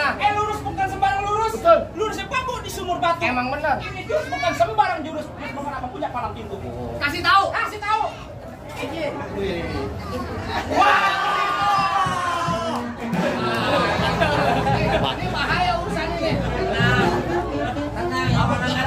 Lurus bukan sembarang lurus. Betul. Lurusnya bambu di sumur batu. Emang bener. Ini jurus bukan sembarang jurus. Bukan apa punya palang pintu. Kasih tahu. Kasih tahu. Ini. Wah. Ini bahaya urusannya nih. Tenang, apa namanya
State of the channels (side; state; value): both; identical; correlation 1.00